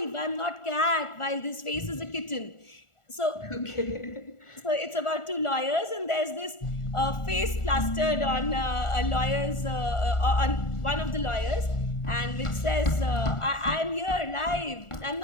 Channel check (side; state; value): right; late; 1.4 ms